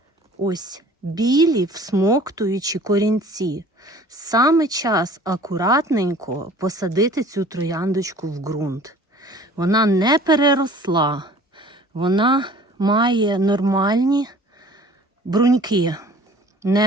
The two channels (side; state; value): both; normal; correlation 0.49